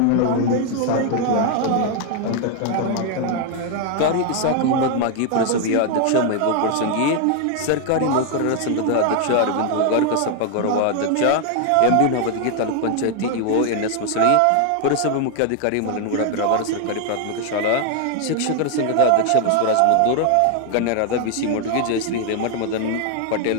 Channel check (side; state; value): both; different; correlation 0.00